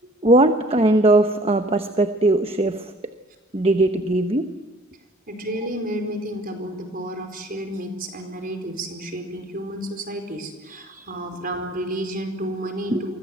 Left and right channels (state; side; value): normal; both; correlation 0.53